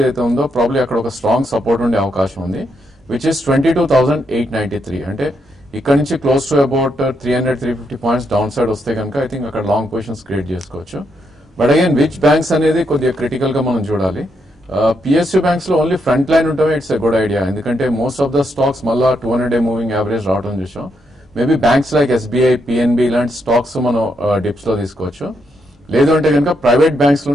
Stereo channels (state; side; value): normal; both; correlation 0.79